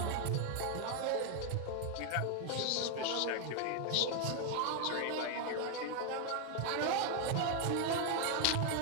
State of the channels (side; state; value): both; different; correlation 0.00